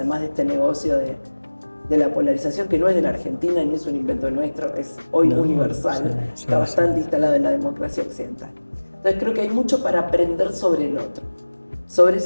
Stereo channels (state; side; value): inverted; both; correlation -1.00